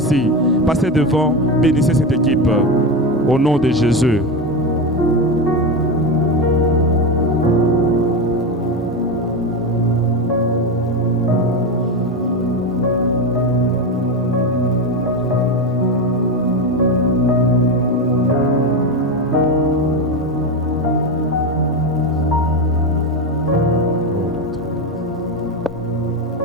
Passez devant, bénissez cette équipe. Au nom de Jésus.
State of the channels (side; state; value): both; normal; correlation 0.15